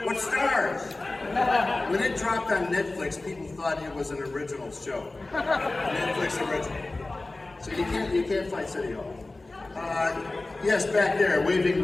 Stars? When it dropped on Netflix, people thought it was an original show. Netflix original. So you can't fight City Hall. Yes, back there, waving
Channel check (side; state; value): right; quieter; 3.1 dB